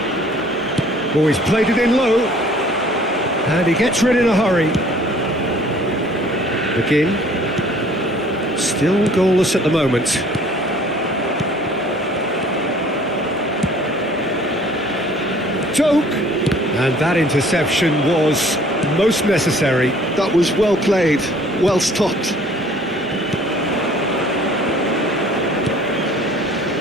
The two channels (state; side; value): normal; both; correlation 0.54